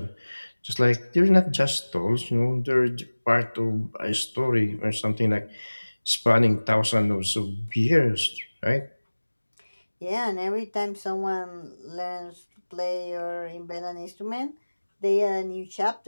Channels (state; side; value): inverted; both; correlation -1.00